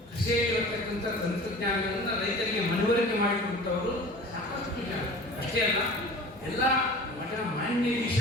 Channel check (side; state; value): both; normal; correlation 0.40